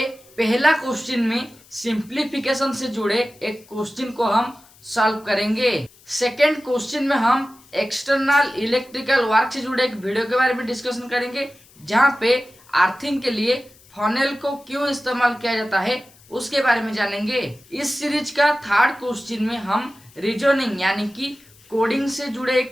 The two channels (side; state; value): left; noise; hiss, 27 dB below the sound